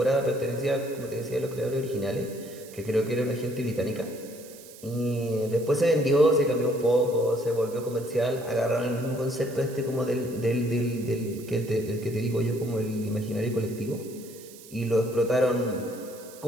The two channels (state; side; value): noise; right; hiss, 19 dB below the sound